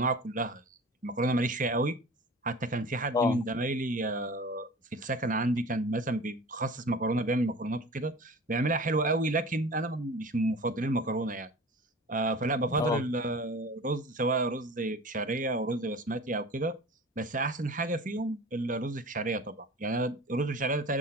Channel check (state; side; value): normal; both; correlation 0.38